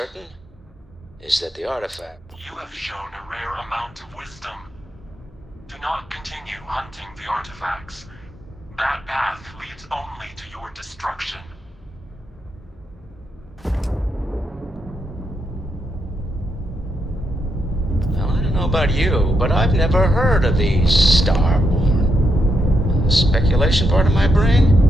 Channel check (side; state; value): both; normal; correlation 0.80